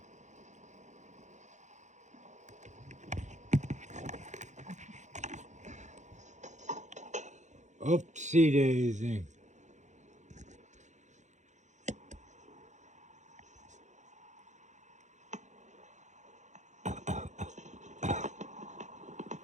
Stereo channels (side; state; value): left; late; 0.34 ms